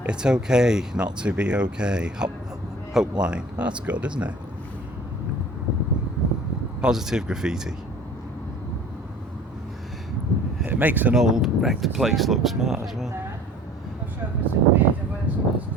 It's okay not to be okay. Hope line. That's good, isn't it? Positive graffiti. It makes an old wrecked place look smart as well. Not sure if it's a grid or whether it's just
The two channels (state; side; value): normal; both; correlation 0.46